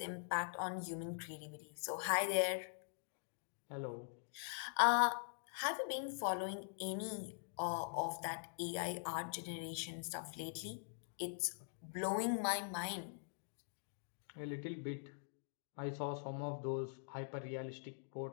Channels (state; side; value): silent; right; digital silence